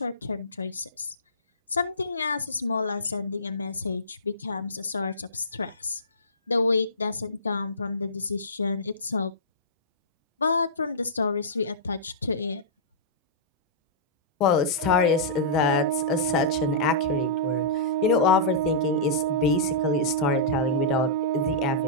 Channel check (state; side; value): normal; both; correlation -0.18